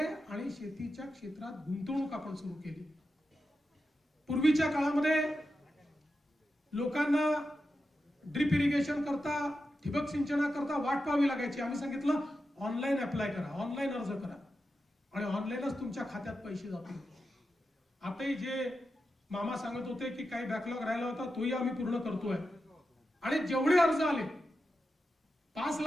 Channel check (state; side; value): normal; both; correlation 0.90